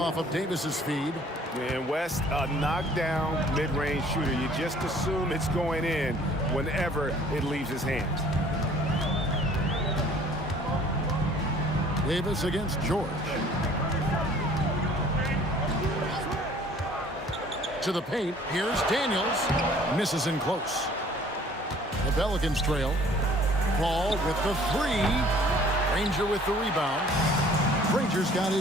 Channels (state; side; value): normal; both; correlation 0.54